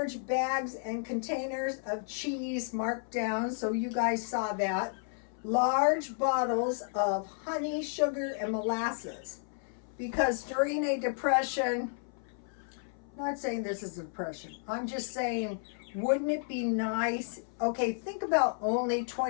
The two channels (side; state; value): right; silent; 56 dB below the other